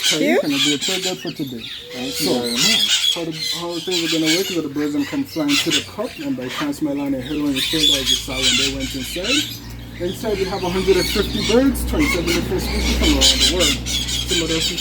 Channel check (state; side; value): identical; both; correlation 1.00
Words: you. And I'll be a tour guide for today. How things are going to work is that the birds can fly into the cup, and by chance my line head on your shoulder as you saw when they went inside. Inside we have 150 birds, 27 different species from around the world. Some of those